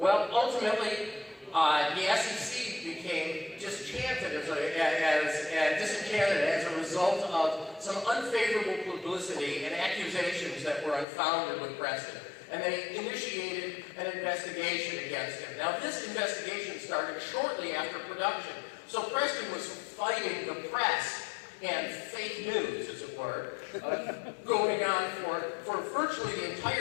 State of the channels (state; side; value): drops out; right; at 11.1 s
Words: ultimately, the SEC became disenchanted as a result of some unfavorable publicity and accusations that were unfounded with Preston. And they initiated an investigation against him. Now, this investigation started shortly after production. So Preston was fighting the press and fake news, as it were, going on for virtually the